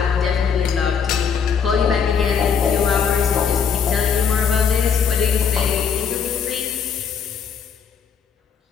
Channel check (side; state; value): right; quieter; 6.8 dB